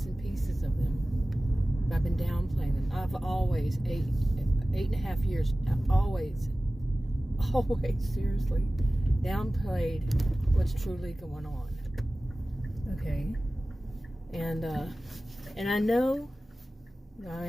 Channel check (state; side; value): normal; both; correlation 0.96